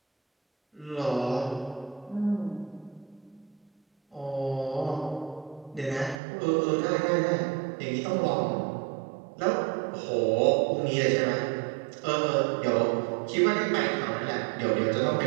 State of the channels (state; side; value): drops out; left; at 6.2 s